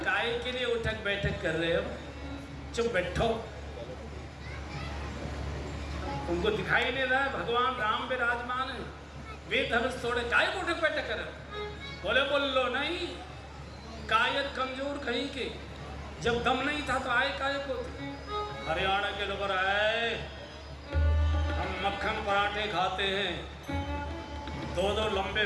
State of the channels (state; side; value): identical; both; correlation 1.00